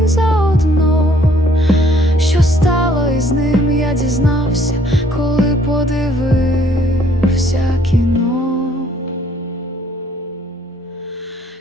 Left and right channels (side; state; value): both; normal; correlation 0.62